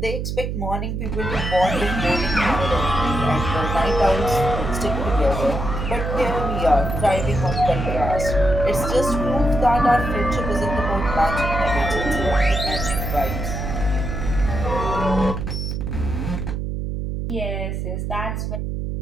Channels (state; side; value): noise; right; hum, 3 dB below the sound